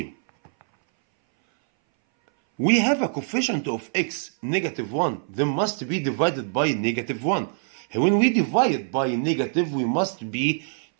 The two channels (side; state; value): left; silent; 60 dB below the other